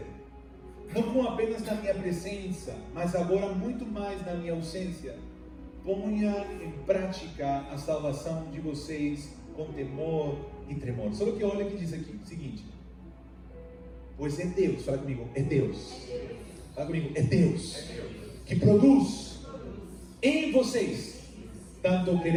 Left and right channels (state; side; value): identical; both; correlation 1.00